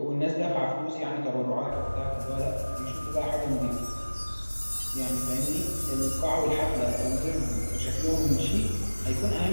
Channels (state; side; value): inverted; both; correlation -1.00